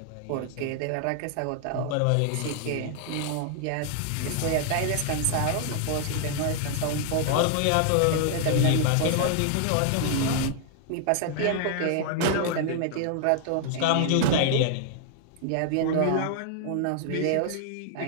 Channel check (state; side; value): different; both; correlation 0.00